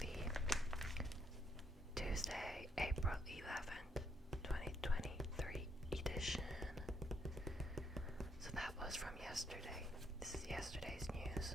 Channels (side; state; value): both; normal; correlation 0.74